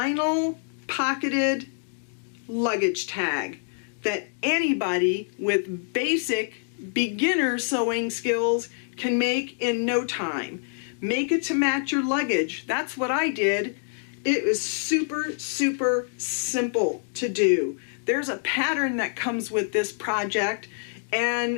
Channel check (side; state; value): right; silent; digital silence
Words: pocketed luggage tag that anybody with basic beginner sewing skills can make in no time. Make it to match your luggage. That's what I did. It was super simple to do. There's a pattern that comes with this project